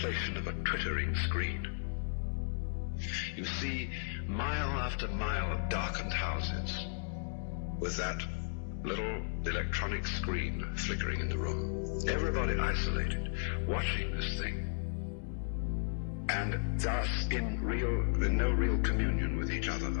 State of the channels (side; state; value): right; silent; digital silence